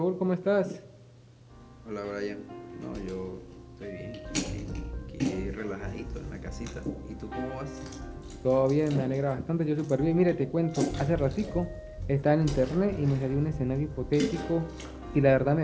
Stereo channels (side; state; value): both; identical; correlation 1.00